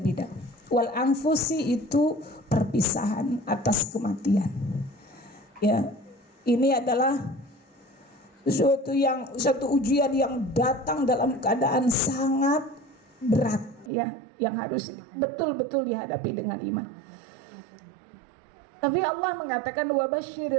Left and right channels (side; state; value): left; drops out; at 13.9 s